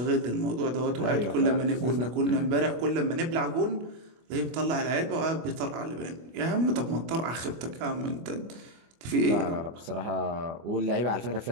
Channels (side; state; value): left; late; 24 ms